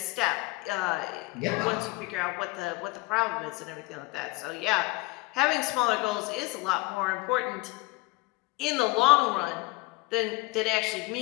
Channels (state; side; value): quieter; right; 22.9 dB